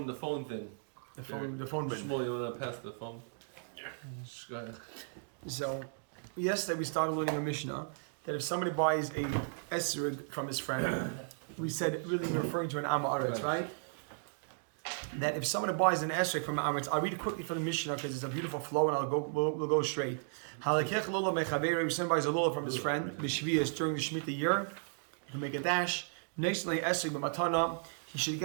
thing. The phone bin. Shmuel, you want to pass the phone? Yeah. Go ahead. So, yesterday we started learning a Mishnah that if somebody buys a esrig from his friend, we said really referring to an Am Haaretz, right? That if somebody buys an esrig from an Am Haaretz, I'll read it quickly from the Mishnah because it's a beautiful flow, and we'll go straight. Halakech lulav mechaveru. If somebody buys a lulav from his friend, b'shvius during the Shemitah year, he can make a dash. Next esrig b'matana, he should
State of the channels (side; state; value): left; silent; digital silence